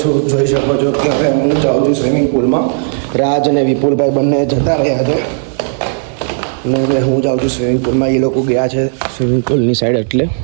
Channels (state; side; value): silent; left; digital silence